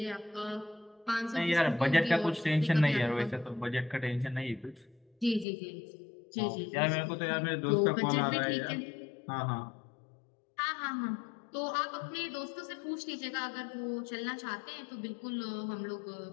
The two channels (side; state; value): right; drops out; at 5.5 s